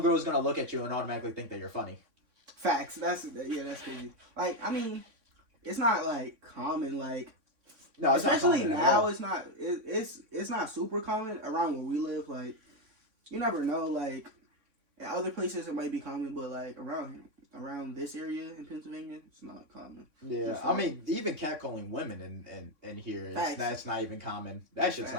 gonna look at you and automatically think that you're funny. facts. That's crazy. Like, I mean, it's not like common. Like, No, it's especially not common at now, all. it's not super common around where we live. Like, you never know. Like, in other places it might be common, but like around this area in Pennsylvania, it's not common. Yeah, Just I like- mean, even catcalling women in here, Facts. that's not even common. That shit's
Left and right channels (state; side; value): late; left; 3.6 ms